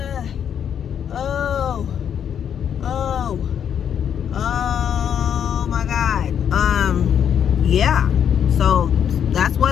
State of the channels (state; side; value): quieter; right; 8.6 dB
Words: Oh my God. Yeah. So that's